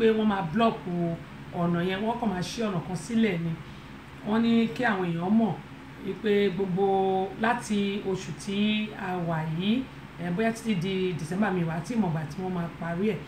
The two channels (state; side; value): identical; both; correlation 1.00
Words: wọ́n máa block ọ̀nà yẹn wọ́n kàn máa ṣí ọ̀nà kan sílẹ̀ ni wọ́n ní kí àwọn èèyàn mọ̀ wípé gbogbo láti oṣù tí a wà yìí bóyá títí di December mi wà tí ìmọ̀gbà tí wọ́n máa parí ẹ̀